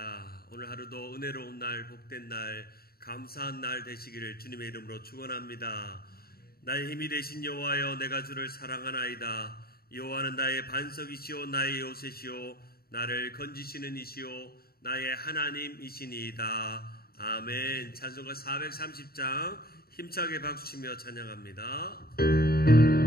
오늘 하루도 은혜로운 날, 복된 날, 감사한 날 되시기를 주님의 이름으로 축원합니다. 나의 힘이 되신 여호와여, 내가 주를 사랑하나이다. 여호와는 나의 반석이시오, 나의 요새시오, 나를 건지시는 이시오, 나의 하나님이시니이다. 아멘. 찬송가 430장 힘차게 박수치며 찬양합니다.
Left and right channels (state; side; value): late; right; 0.44 ms